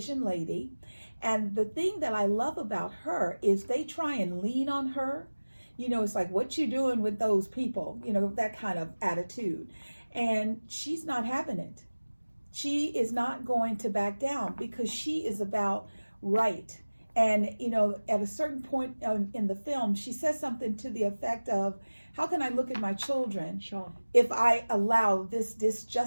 lady. And the thing that I love about her is they try and lean on her. You know, it's like, what you doing with those people? You know, that kind of attitude. And she's not having it. She is not going to back down because she is about right. And, you know, at a certain point in the film, she says something to the effect of, how can I look at my children if I allow this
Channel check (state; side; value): inverted; both; correlation -1.00